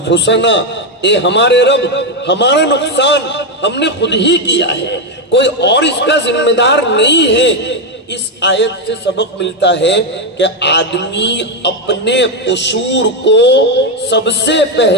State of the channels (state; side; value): normal; both; correlation 0.06